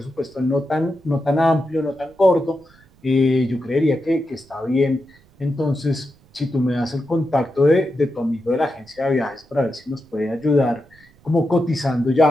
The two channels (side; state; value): right; noise; rumble, 29 dB below the sound